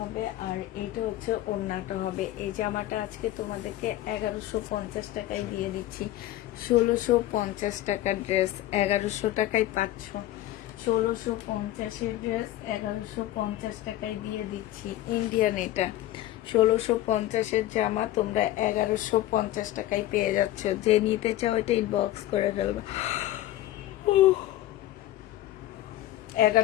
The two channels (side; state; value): right; quieter; 14.6 dB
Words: আর এইটা হচ্ছে ওড়নাটা হবে। এই জামাটা আজকে তোমাদেরকে 1150 টাকায় দিয়ে দিচ্ছি। 1650 টাকার ড্রেস 1100 টাকায় পাচ্ছ। 1650-এর ড্রেস 1150 টাকায় দিয়ে দিচ্ছি। ইন্ডিয়ান এটা 1650-এর জামা তোমরা 1150 টাকায় পেয়ে যাচ্ছ। যে নিতে চাও এটা ইনবক্স করে ফেলবে।